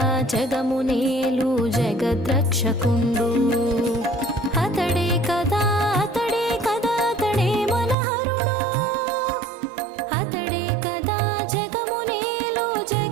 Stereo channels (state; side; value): drops out; left; at 8.0 s